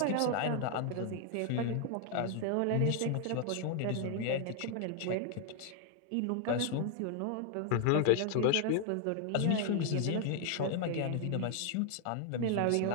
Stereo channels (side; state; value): both; different; correlation 0.00